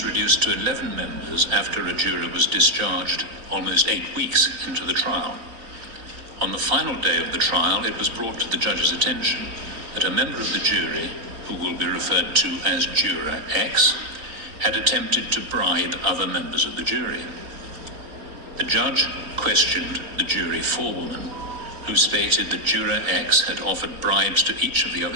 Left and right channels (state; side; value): late; left; 4.0 ms